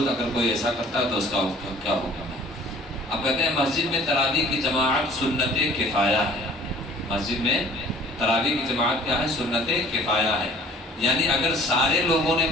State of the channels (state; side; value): normal; both; correlation 0.51